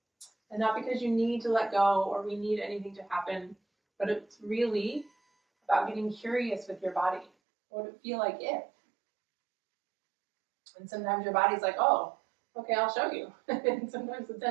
And not because you need to let go or we need anything to happen, but it's really about getting curious with your body. What would it feel like if? And sometimes your body's like, oh, okay, I'll show you. And sometimes the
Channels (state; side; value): drops out; left; at 7.3 s